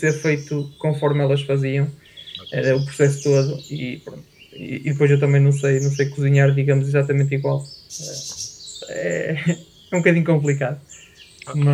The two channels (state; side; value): identical; both; correlation 1.00